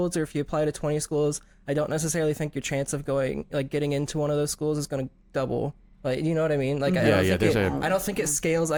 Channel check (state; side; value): identical; both; correlation 1.00